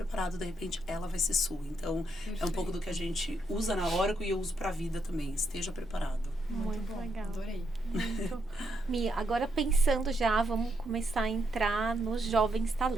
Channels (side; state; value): both; normal; correlation 0.79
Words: de repente, ela vai ser sua. Então, é um pouco do que a gente usa na Oracle e eu uso pra vida também. Esteja preparado. Muito legal. Adorei. Muito. Mi, agora pensando já, vamos começar a entrar nos jovens